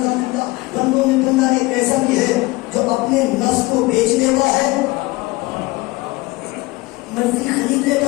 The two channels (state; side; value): quieter; right; 21.6 dB